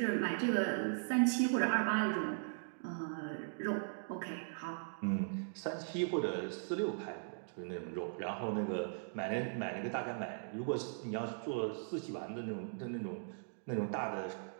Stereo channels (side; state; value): left; silent; digital silence